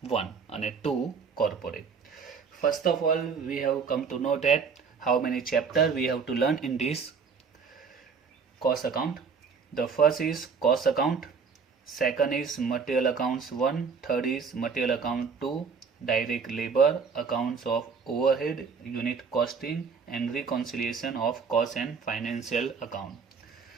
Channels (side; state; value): left; quieter; 5.6 dB